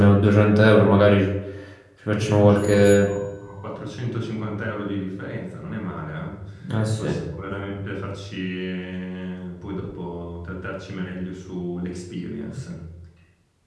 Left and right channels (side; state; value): both; identical; correlation 1.00